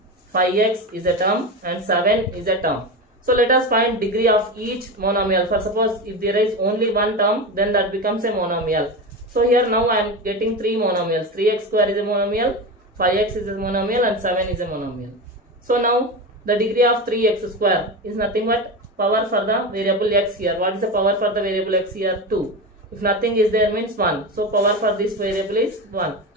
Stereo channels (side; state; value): both; normal; correlation 0.21